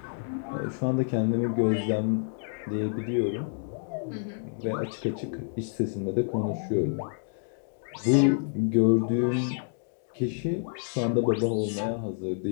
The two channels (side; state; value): right; silent; digital silence